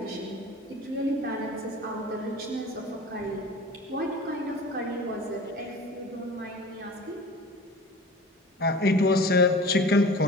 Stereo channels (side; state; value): both; normal; correlation 0.40